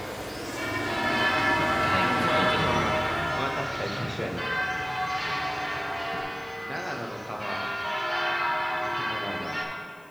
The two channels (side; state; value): left; noise; hiss, 29 dB below the sound